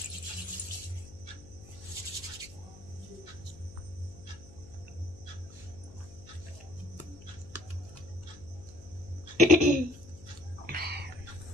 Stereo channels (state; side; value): noise; left; hum, 19 dB below the sound